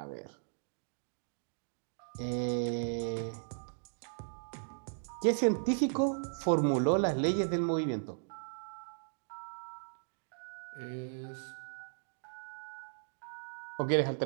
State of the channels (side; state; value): left; silent; digital silence